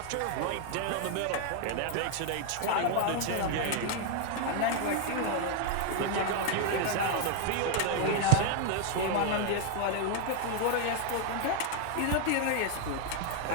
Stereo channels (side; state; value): both; different; correlation 0.00